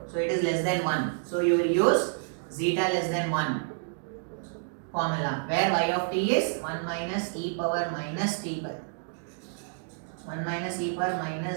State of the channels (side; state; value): left; silent; digital silence